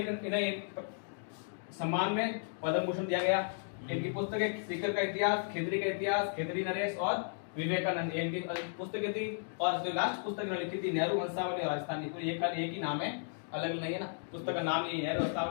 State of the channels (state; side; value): silent; right; digital silence